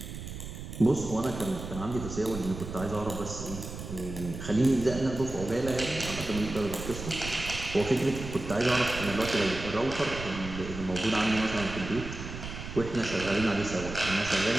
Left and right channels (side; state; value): right; noise; rumble, 9 dB below the sound